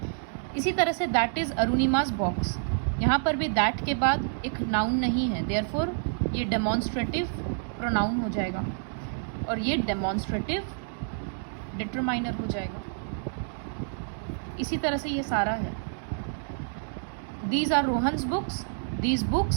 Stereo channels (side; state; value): left; silent; digital silence